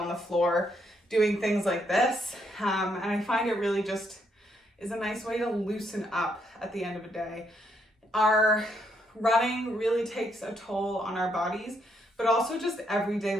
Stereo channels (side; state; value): both; normal; correlation 0.75